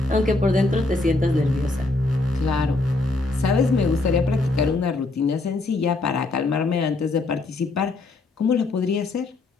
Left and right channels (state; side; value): quieter; right; 3.2 dB